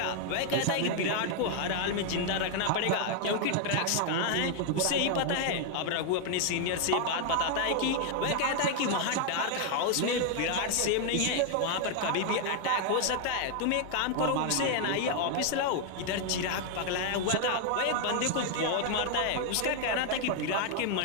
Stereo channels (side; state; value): both; different; correlation 0.00